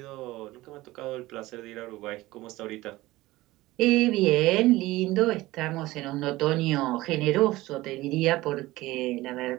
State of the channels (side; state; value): left; quieter; 18.4 dB